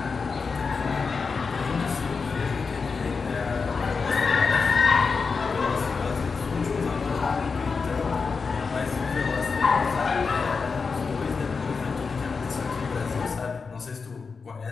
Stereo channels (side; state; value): right; quieter; 4.9 dB